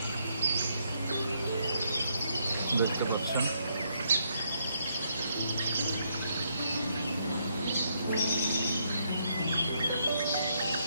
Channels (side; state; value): both; inverted; correlation -0.75